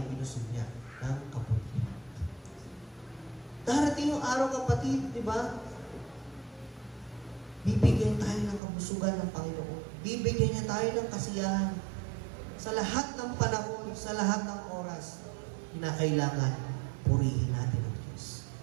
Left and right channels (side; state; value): left; drops out; at 8.6 s